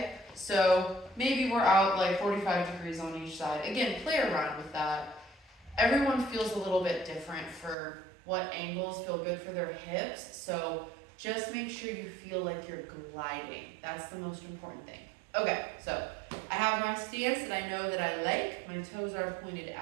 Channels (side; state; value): left; drops out; at 7.8 s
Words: So maybe we're out like 45 degrees on each side. Again, play around with that. Everyone feels a little bit different for what angles feel good for their hips. So just make sure you feel like you're gliding. That's the most important thing. Okay, so I have my stance that I know that I like. My toes are pointed